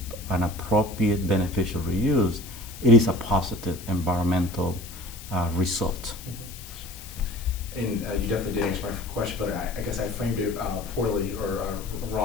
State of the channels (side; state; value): left; noise; hiss, 15 dB below the sound